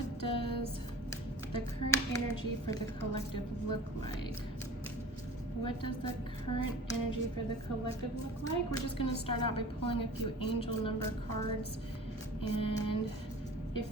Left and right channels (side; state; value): both; normal; correlation 0.40